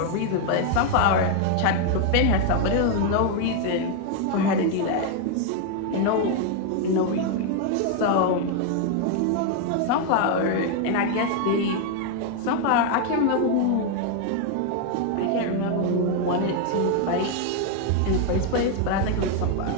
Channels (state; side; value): different; both; correlation 0.01